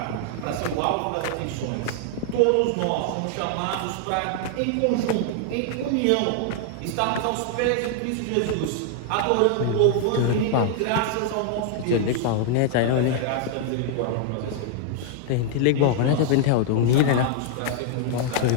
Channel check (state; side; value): different; both; correlation 0.00